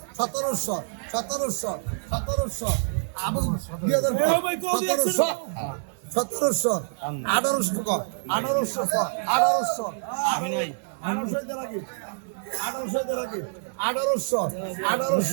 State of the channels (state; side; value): silent; left; digital silence